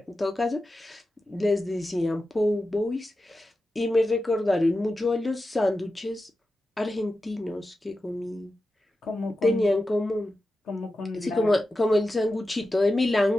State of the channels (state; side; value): normal; both; correlation 0.92